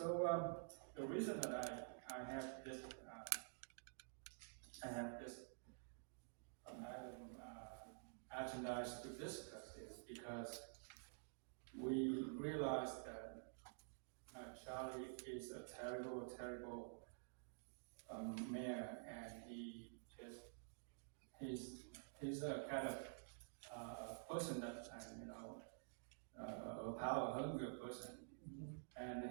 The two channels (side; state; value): left; silent; digital silence